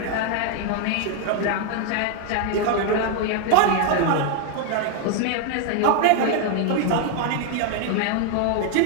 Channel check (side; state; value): both; different; correlation 0.00